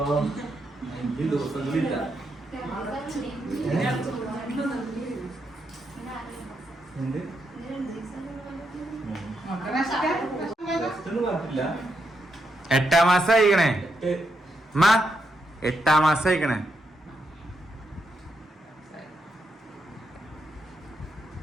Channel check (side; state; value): both; normal; correlation 0.81